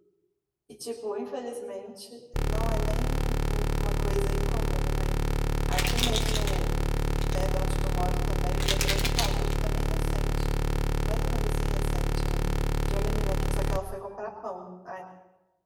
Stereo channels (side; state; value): both; identical; correlation 1.00